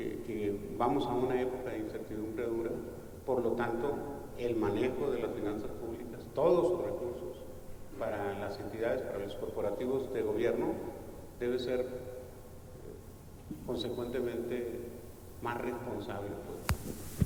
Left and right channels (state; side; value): identical; both; correlation 1.00